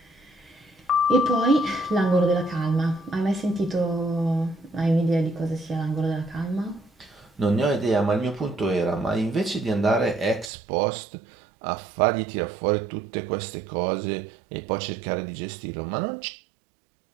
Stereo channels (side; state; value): left; drops out; at 10.5 s